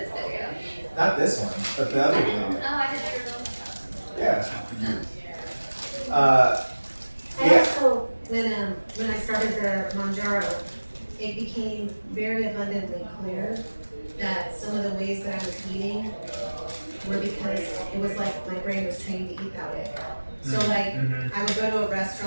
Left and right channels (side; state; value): both; inverted; correlation -1.00